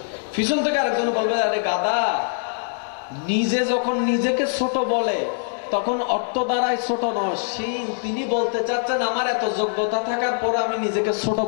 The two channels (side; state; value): right; silent; 63 dB below the other